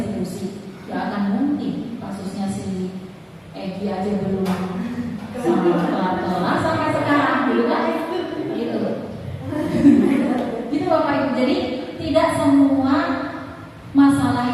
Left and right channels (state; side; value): identical; both; correlation 1.00